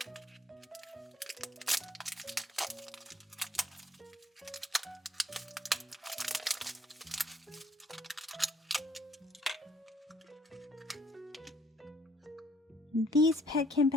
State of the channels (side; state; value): both; normal; correlation 0.64